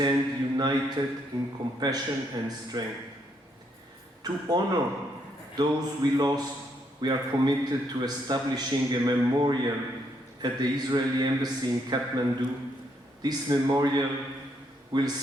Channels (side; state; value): both; normal; correlation 0.74